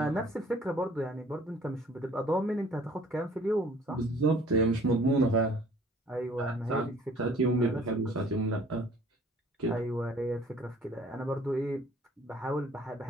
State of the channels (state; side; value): normal; both; correlation 0.55